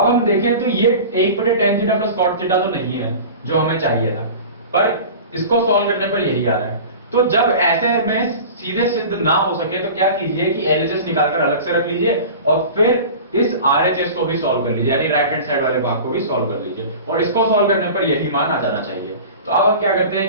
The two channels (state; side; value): inverted; both; correlation -0.36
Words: हम देखें तो ये 1 बटे tan theta plus cot theta तो नहीं है जो हमें चाहिए था, पर इसको सॉल्व करने पर यही आ रहा है। तो जब ऐसे में सीधे सिद्ध ना हो सके तो क्या कीजिए कि एलएचएस निकालकर अलग से रख लीजिए और फिर इस आरएचएस को भी सॉल्व कर लीजिए, यानी राइट हैंड साइड वाले भाग को भी सॉल्व कर लीजिए, और इसको सॉल्व करने पर यही मान आ जाना चाहिए। तो अब हम क्या करते